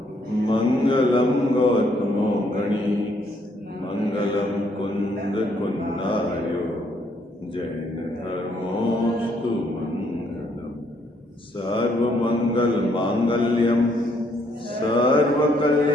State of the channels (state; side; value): normal; both; correlation 0.70